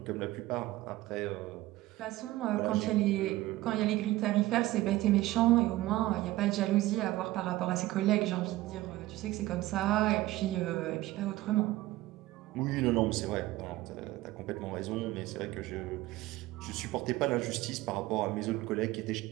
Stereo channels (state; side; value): quieter; left; 17.3 dB